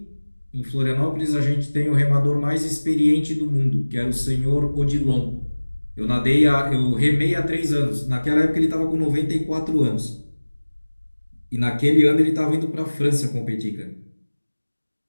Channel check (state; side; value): inverted; both; correlation -1.00